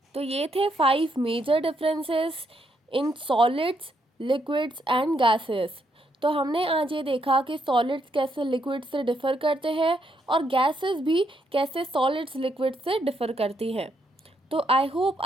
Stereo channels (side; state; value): both; normal; correlation 0.76